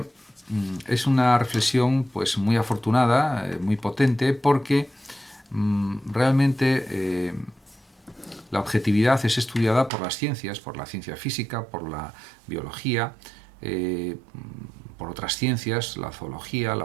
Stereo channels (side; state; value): left; drops out; at 9.9 s